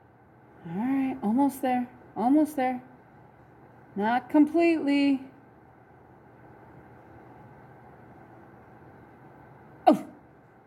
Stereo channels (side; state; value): both; identical; correlation 1.00